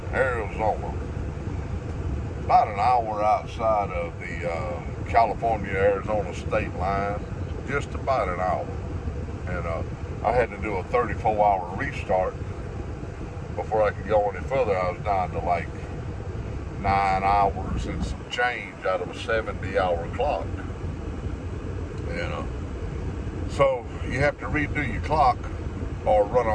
Arizona. About an hour outside of the California-Arizona state line. Just about an hour. And I had to do a 34-hour restart before I could go any further. I was down to like 9 hours and some change out of a 70-hour clock. And so you have to redo your clock or run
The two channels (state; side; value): identical; both; correlation 1.00